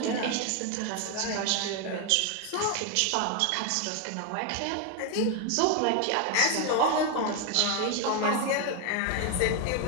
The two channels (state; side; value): different; both; correlation 0.01